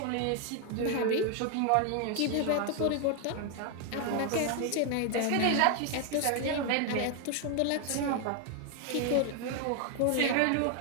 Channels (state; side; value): different; both; correlation 0.01